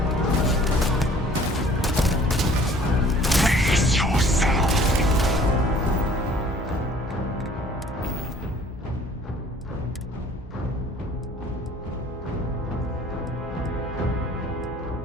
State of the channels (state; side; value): normal; both; correlation 0.53